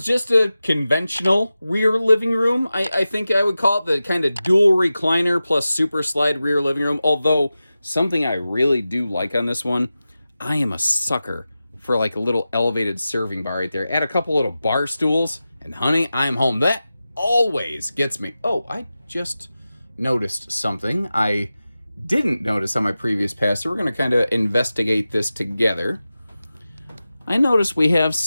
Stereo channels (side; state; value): both; inverted; correlation -0.94